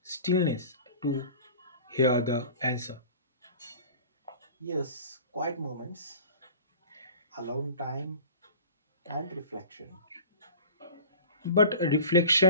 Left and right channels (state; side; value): inverted; both; correlation -0.39